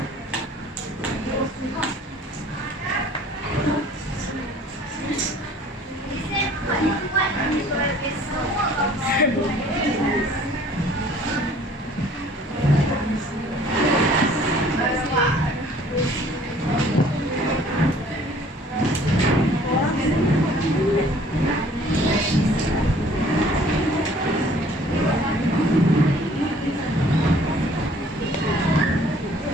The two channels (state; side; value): normal; both; correlation 0.54